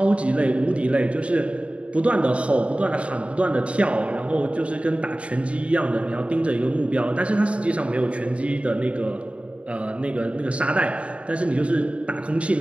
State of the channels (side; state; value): left; late; 0.062 ms